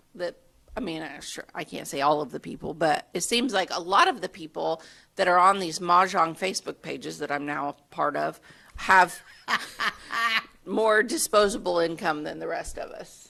that, I mean, sure, I can't say all of the people, but it seems like a lot of the people that are on these Mahjong Facebook pages that I'm now a part of have more disposable income than the rest of us.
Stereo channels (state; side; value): identical; both; correlation 1.00